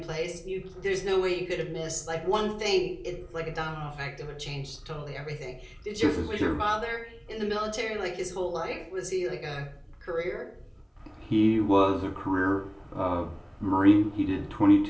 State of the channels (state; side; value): identical; both; correlation 1.00